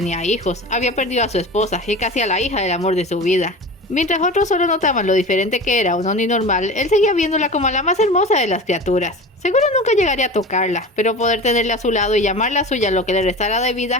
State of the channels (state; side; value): normal; both; correlation 0.33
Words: hijos, había perdido a su esposa y casi a la hija del amor de su vida. Mientras otros solo notaban lo diferente que era un Oni normal, él seguía viéndola como la más hermosa de las criaturas. Seguro nunca llegaría a tocarla, pero poder tenerla a su lado y llamarla suya lo que le restara de vida